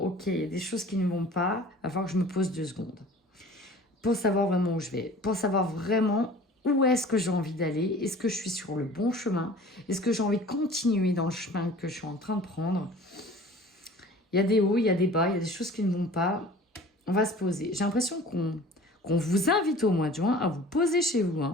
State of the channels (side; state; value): both; normal; correlation 0.45